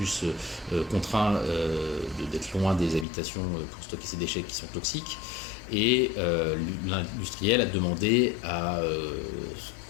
contraint d'être loin des habitations pour stocker ces déchets qui sont toxiques. Et l'industriel a demandé à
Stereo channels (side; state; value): right; drops out; at 3.1 s